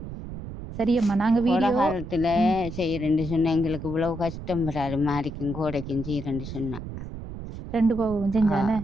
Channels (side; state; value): right; noise; rumble, 10 dB below the sound